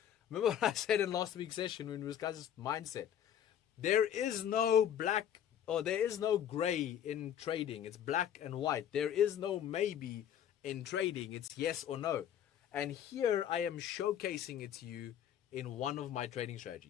Remember what I said in last week's session when we discussed mindset? There is no black, or there is no gray in trading. It's black and white. There is no maybe in trading. It's yes or no. And here I am showcasing it to you in one of my trading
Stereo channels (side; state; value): right; quieter; 9.8 dB